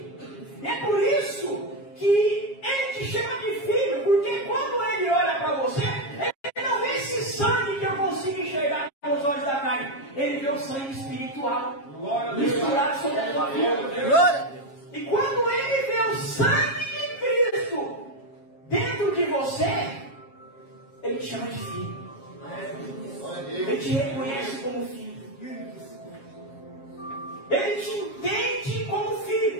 E é por isso que Ele te chama de filho, porque quando Ele olha para você, Ele não vê esse sangue que eu consigo enxergar com os olhos da carne, Ele vê o sangue espiritual misturado sobre a tua vida. E quando Ele vê o sangue de Cristo dentro de você, Ele te chama de filho. Ele te reconhece como filho. Ele te entende como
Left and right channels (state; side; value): late; right; 7.4 ms